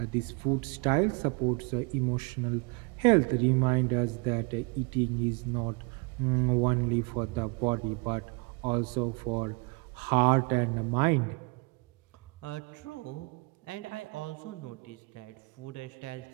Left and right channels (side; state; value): left; quieter; 28.4 dB